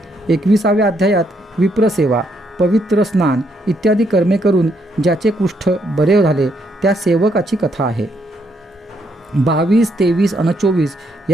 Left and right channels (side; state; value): both; normal; correlation 0.74